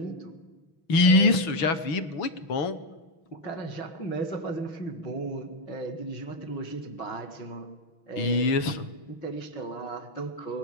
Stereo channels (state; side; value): late; right; 6.2 ms